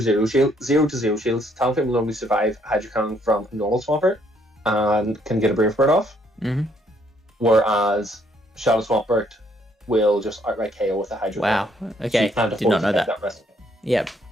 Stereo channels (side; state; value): both; normal; correlation 0.68